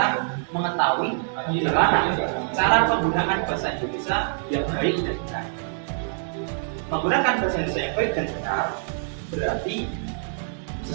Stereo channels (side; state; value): left; silent; digital silence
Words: mengetahui bagaimana cara penggunaan bahasa Indonesia yang baik dan benar. Menggunakan bahasa Indonesia yang baik dan benar berarti